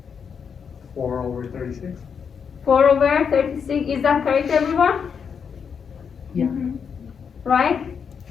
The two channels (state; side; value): quieter; right; 6.7 dB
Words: 4/36. 4/36, is that correct everyone? Yeah. Right?